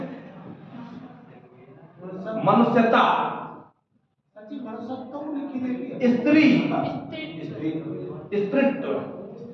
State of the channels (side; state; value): both; identical; correlation 1.00